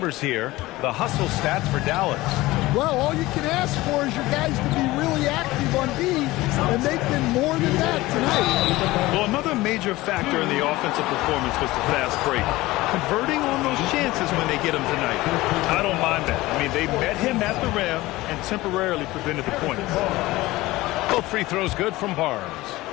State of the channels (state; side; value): quieter; right; 18.9 dB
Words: here. The hustle stats for Dallas. Well, all you can ask for is your guys to be really active on D, and they've been more than that tonight. Well, another major factor in the offensive performance was the fast break. Converting on those chances when they get them tonight. I don't mind that. I mean, they met him at the rim and temporarily prevented the points. Both free throws good from Barnes.